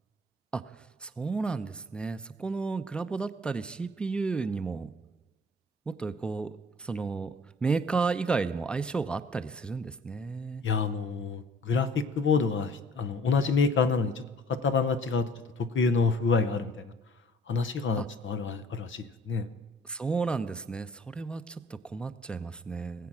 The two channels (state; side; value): normal; both; correlation 0.55